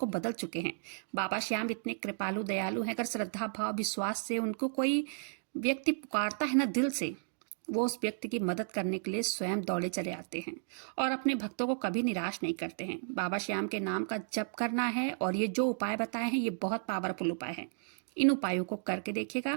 बदल चुके हैं। बाबा श्याम इतने कृपालु दयालु हैं, अगर श्रद्धा भाव विश्वास से उनको कोई व्यक्ति पुकारता है ना दिल से, वो उस व्यक्ति की मदद करने के लिए स्वयं दौड़े चले आते हैं और अपने भक्तों को कभी निराश नहीं करते हैं। बाबा श्याम के नाम का जप करना है और ये जो उपाय बताए हैं ये बहुत पावरफुल उपाय है। इन उपायों को करके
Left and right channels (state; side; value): silent; left; digital silence